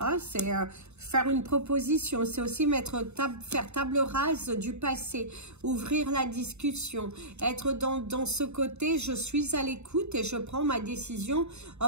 c'est faire une proposition, c'est aussi faire table rase du passé, ouvrir la discussion, être dans ce côté, je suis à l'écoute et je prends ma décision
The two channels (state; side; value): late; left; 0.81 ms